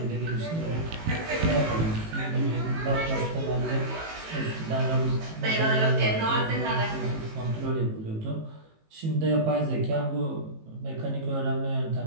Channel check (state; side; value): late; left; 18 ms